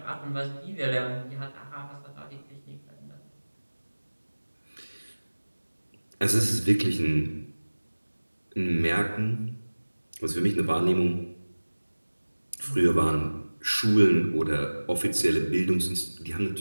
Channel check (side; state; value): both; inverted; correlation -1.00